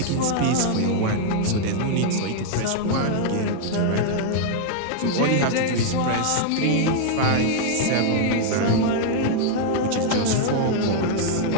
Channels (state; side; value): different; both; correlation 0.00